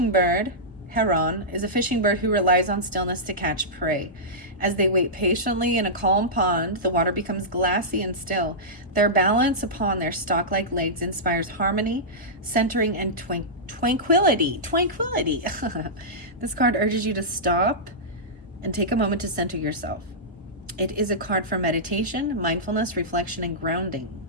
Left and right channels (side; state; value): both; normal; correlation -0.14